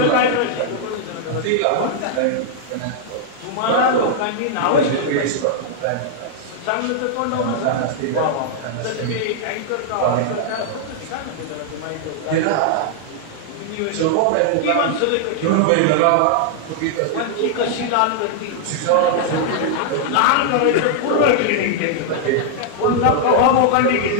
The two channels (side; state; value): both; different; correlation -0.01